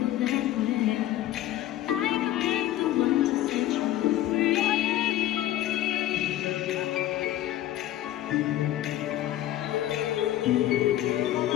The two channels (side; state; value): right; quieter; 13.5 dB